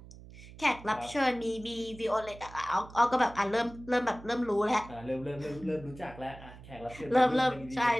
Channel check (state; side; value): noise; right; hum, 17 dB below the sound